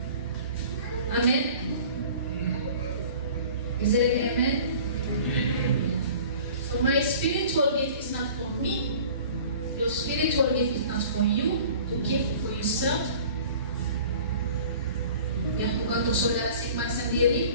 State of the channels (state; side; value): inverted; both; correlation -0.46